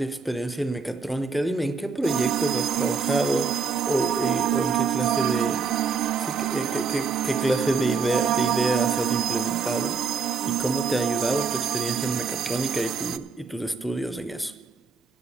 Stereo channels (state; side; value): quieter; left; 4.9 dB